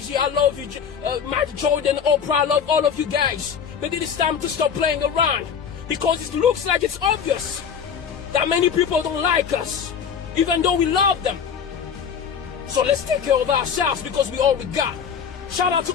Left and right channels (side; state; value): right; quieter; 7.1 dB